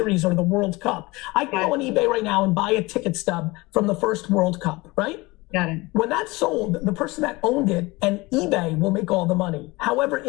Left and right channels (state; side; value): quieter; right; 22.6 dB